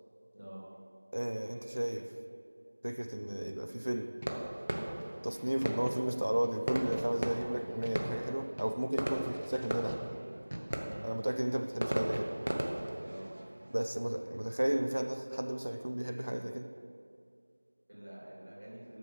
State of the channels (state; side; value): inverted; both; correlation -1.00